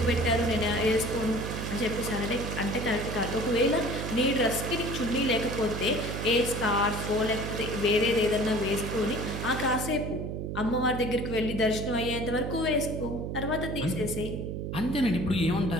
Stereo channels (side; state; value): right; noise; hum, 4 dB below the sound